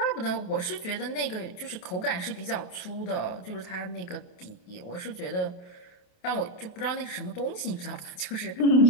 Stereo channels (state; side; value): late; right; 28 ms